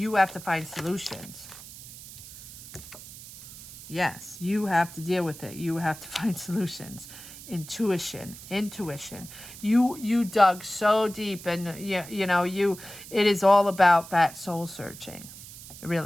have to find solutions. Yes, you have to deal with it. You have to find solutions. Intuition. You dug so deep, and it is all about that soul searching,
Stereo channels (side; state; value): right; noise; hiss, 15 dB below the sound